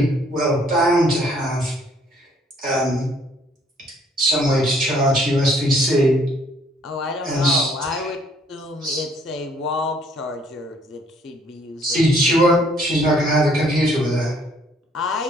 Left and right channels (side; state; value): both; normal; correlation 0.63